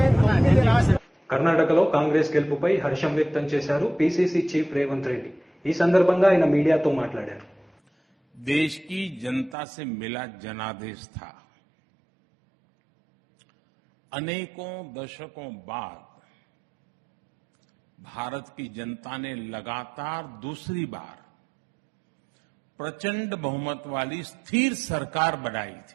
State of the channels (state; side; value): drops out; left; at 9.6 s